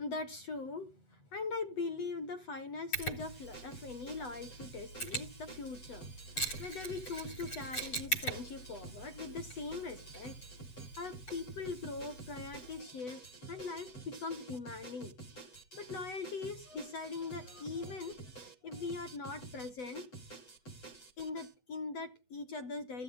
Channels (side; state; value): right; late; 8.0 ms